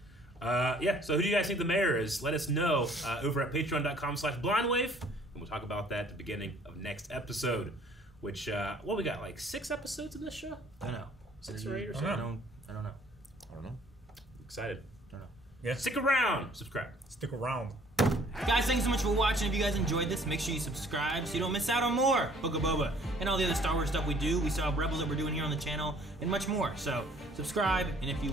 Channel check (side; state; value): both; normal; correlation 0.57